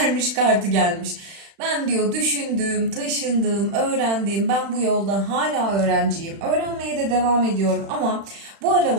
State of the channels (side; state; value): left; late; 36 ms